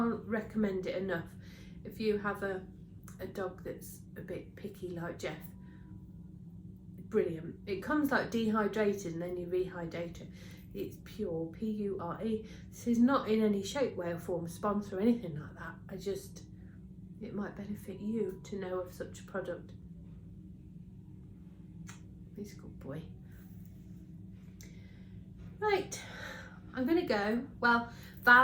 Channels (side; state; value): both; identical; correlation 1.00